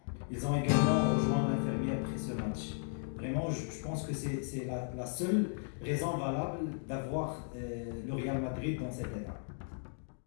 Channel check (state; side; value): silent; right; digital silence